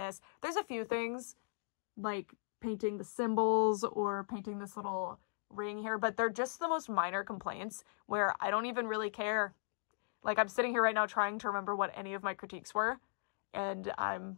There's a few things like painting the symbols or painting this little ring here, but they're just the most minor complaints where I don't even really care. Like, I'm sitting here right now trying to remember what any of my critiques were, and I'm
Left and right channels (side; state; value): right; silent; digital silence